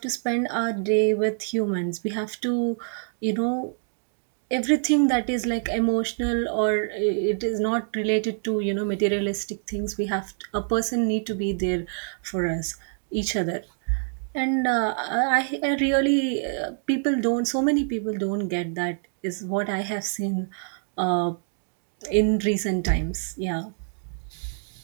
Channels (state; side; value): silent; left; 61 dB below the other